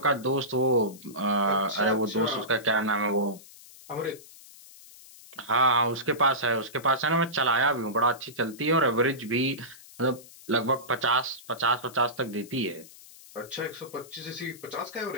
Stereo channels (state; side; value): noise; left; hiss, 20 dB below the sound